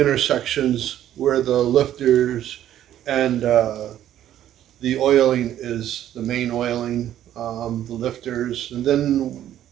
where the lifters and the oiling is the main oiling, the lifters, and then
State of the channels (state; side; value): quieter; left; 11.7 dB